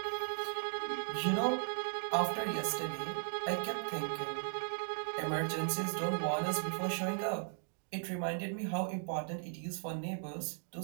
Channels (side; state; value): left; silent; digital silence